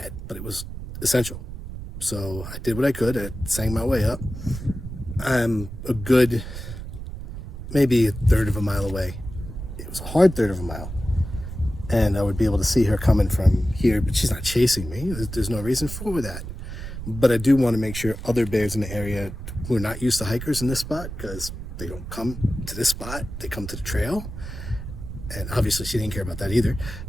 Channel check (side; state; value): right; noise; rumble, 9 dB below the sound